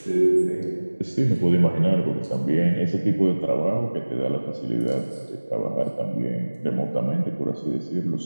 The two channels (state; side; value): inverted; both; correlation -1.00